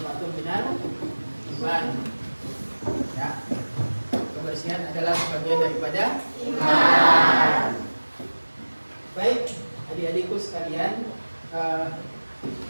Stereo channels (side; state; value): both; inverted; correlation -1.00